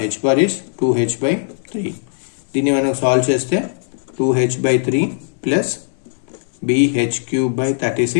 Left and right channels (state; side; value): silent; right; 67 dB below the other